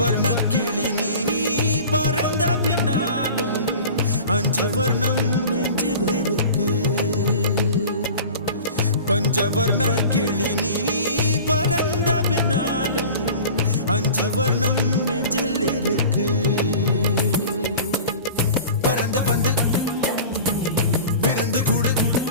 கிளி நீ பறந்த பின்னாலும் 5 வர்ணம் நெஞ்சில் இருக்கு. பஞ்சவர்ண கிளி நீ பறந்த பின்னாலும் 5 வர்ணம் நெஞ்சில் இருக்கு. பறந்து வந்து விருந்து கூடு,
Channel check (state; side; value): inverted; both; correlation -0.38